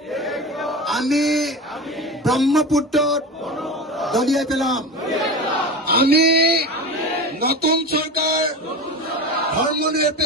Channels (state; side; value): normal; both; correlation 0.27